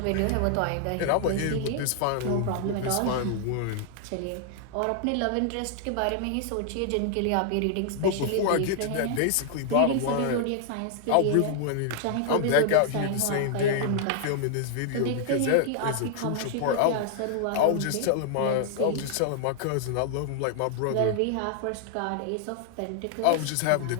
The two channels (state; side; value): different; both; correlation 0.00